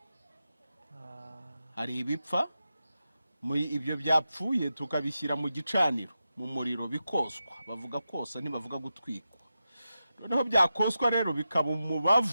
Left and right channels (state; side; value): inverted; both; correlation -0.90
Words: Hari ibipfa ibyo byapfuye tukabishyira mu gicaniro mu muriro bikoswa. Bavuga kosa ntibavuga gutwikwa. Noneho byakoswa rero bikaba